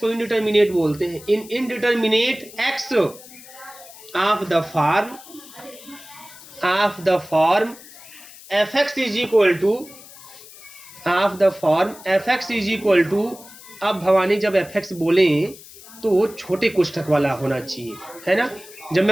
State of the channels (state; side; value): noise; left; hiss, 19 dB below the sound